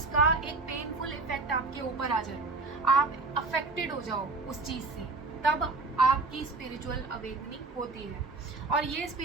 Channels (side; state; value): left; quieter; 3.6 dB